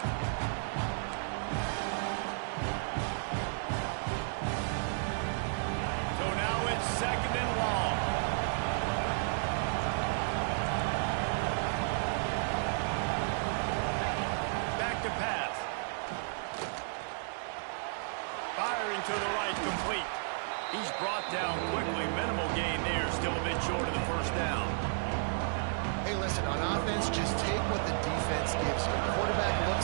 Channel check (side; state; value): left; silent; digital silence